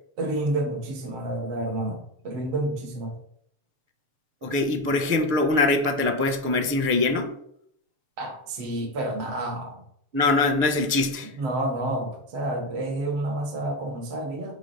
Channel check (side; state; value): left; late; 6.7 ms